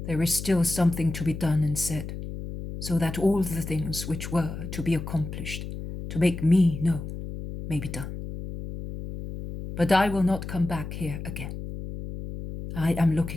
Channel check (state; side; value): noise; left; hum, 8 dB below the sound